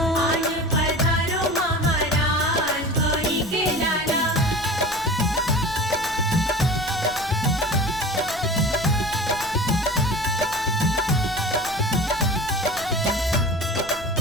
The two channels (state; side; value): noise; left; rumble, 18 dB below the sound